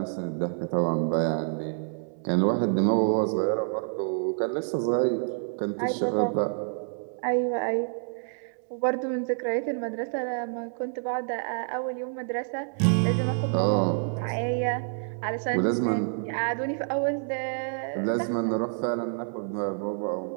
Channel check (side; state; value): left; silent; 59 dB below the other